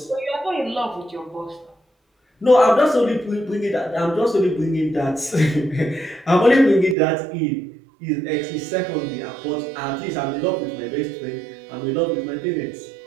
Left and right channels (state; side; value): drops out; left; at 7.0 s